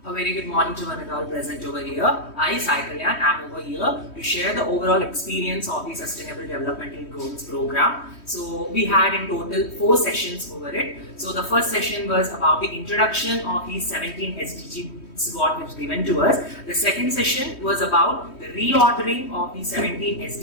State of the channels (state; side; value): late; right; 3.1 ms